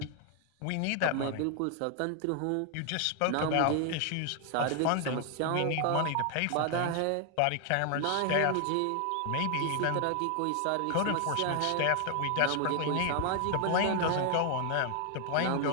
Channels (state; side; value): different; both; correlation 0.00